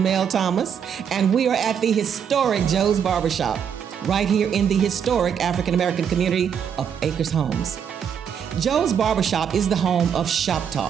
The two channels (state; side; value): quieter; left; 7.8 dB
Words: Thomas, and we are at the historic Joe's Barbershop, right here in the historic African American community of Acres Homes. Joe's Barbershop is the home of Shop